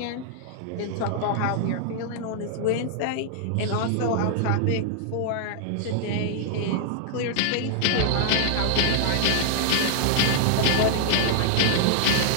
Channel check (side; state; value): both; different; correlation -0.01